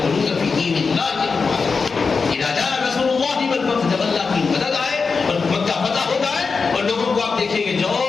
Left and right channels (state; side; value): quieter; right; 4.8 dB